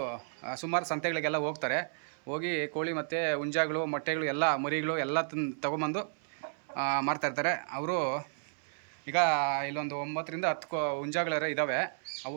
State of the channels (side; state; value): left; silent; 56 dB below the other